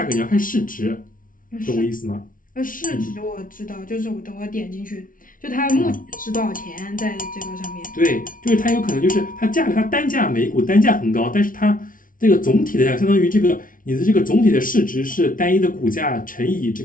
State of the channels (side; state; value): right; late; 0.39 ms